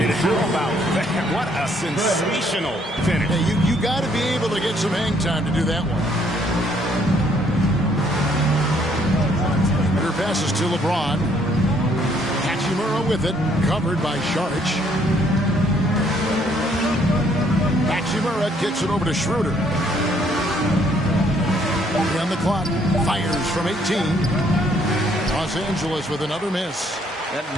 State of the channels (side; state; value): both; normal; correlation 0.66